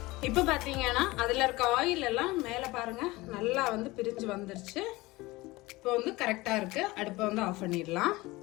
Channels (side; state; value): right; quieter; 20.8 dB